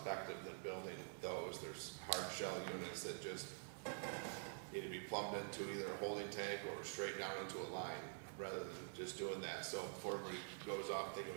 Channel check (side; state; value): left; silent; digital silence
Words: than building those. There's hard shell units that just need to be plumbed into either a holding tank or straight down into a line rather than just doing that. So before everybody goes off thinking